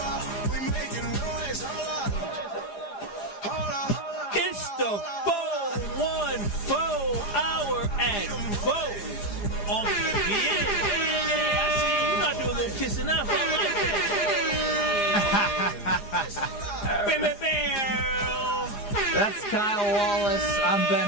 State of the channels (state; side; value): late; right; 4.9 ms